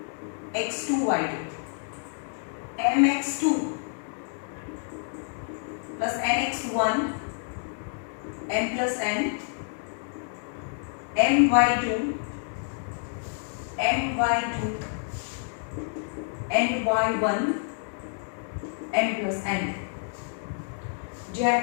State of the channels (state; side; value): silent; right; digital silence